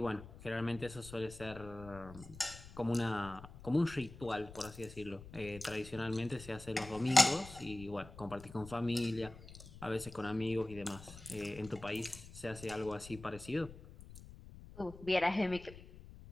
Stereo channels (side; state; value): left; noise; rumble, 16 dB below the sound